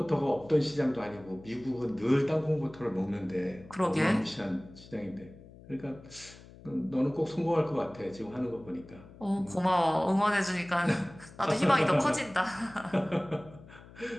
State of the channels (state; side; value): noise; left; hum, 20 dB below the sound